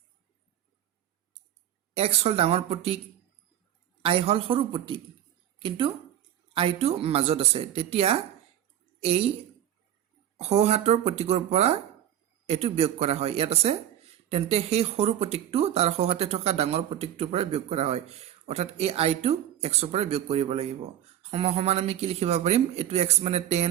এক্স হল ডাঙৰ প্ৰতীক আই হল সৰু প্ৰতীক কিন্তু আইটো মাজত আছে তেতিয়া এই সহাতৰ প্ৰতীকৰ পৰা এটো বিয়োগ কৰা হয় ইয়াত আছে তেন্তে সেই সৰু প্ৰতীকটো তাৰ সহাতে থকা ডাঙৰ প্ৰতীকটোৰ পৰা বিয়োগ কৰা হয় অৰ্থাৎ এই আইটো x ৰ পৰা বিয়োগ কৰিব লাগিব সমান আমি কি লিখিব পাৰিম এটো x মানে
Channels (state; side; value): quieter; left; 11.4 dB